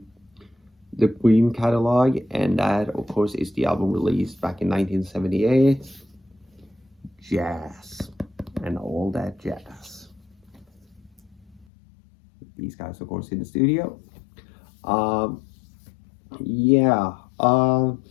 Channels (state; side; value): drops out; right; at 11.7 s